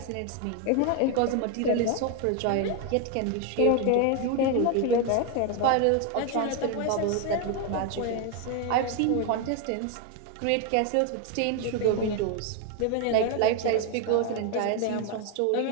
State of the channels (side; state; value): both; different; correlation 0.01